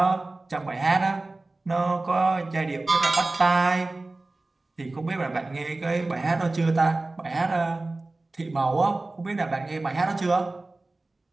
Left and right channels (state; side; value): quieter; left; 3.1 dB